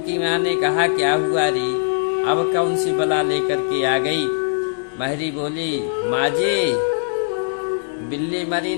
माँ ने कहा, क्या हुआ री, अब कौन सी बला लेकर के आ गई। महरी बोली, माँ जी, बिल्ली मरी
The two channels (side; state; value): right; silent; digital silence